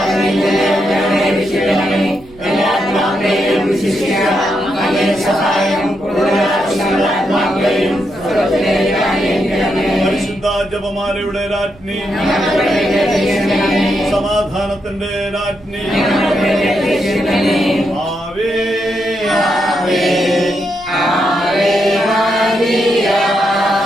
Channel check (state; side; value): noise; right; rumble, 24 dB below the sound